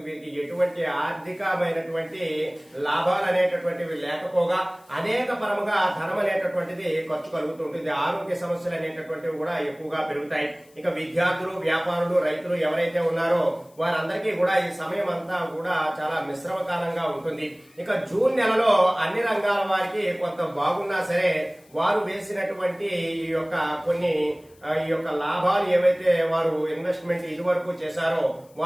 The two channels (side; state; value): left; noise; hiss, 30 dB below the sound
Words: వీరికి ఎటువంటి ఆర్థికమైనటువంటి లాభాలు అనేటటువంటివి లేకపోగా అనేక పరముగా ధనం అనేటటువంటిది ఖర్చు కలుగుతుంటుంది. ఆరోగ్య సమస్యలు అనేటటువంటివి కూడా ఎక్కువగా పెరుగుతాయి. ఇక విద్యార్థులు, వ్యాపారులు, రైతులు ఎవరైతే ఉన్నారో వారందరికీ కూడా ఈ సమయం అంతా కూడా చాలా మిశ్రమ కాలంగా ఉంటుంది. ఇక జూన్ నెలలో అన్ని రంగాల వారికి కొంత బాగున్నా సరే వారు వేసినటువంటి ఈ యొక్క కొన్ని ఈ యొక్క లాభాలు ఏవైతే వారు ఇన్వెస్ట్మెంట్ ఇదివరకు చేశారో